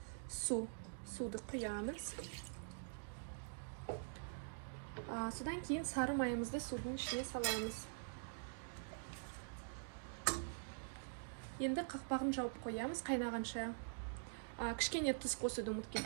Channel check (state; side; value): silent; left; digital silence